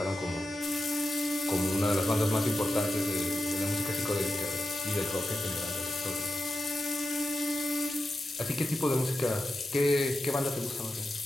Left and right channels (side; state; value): both; normal; correlation 0.90